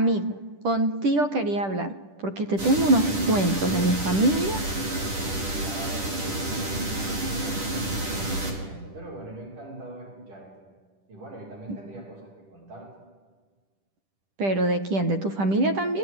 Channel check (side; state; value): left; late; 10 ms